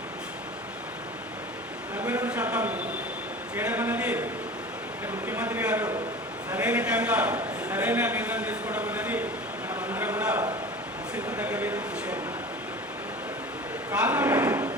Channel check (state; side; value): normal; both; correlation 0.36